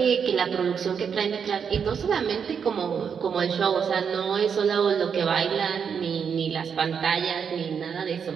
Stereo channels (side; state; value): left; quieter; 6.9 dB